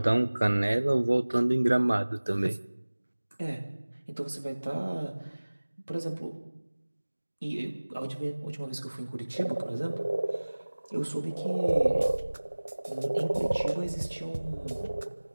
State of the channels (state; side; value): inverted; both; correlation -1.00